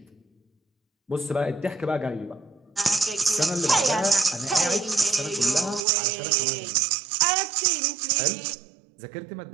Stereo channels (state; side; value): drops out; left; at 5.8 s